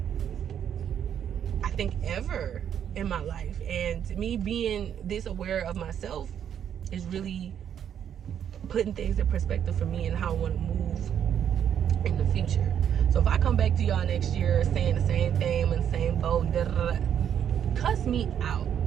I think, ever in my life. And me being this aware of myself is really putting things in perspective for me and how I want to move in the future. So if I come back to y'all next year saying the same thing, I'm in the same boat, cuss me out.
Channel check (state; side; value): quieter; left; 9.1 dB